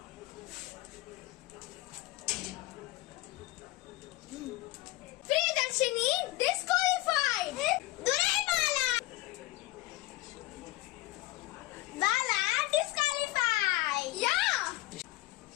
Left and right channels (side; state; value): right; quieter; 19.1 dB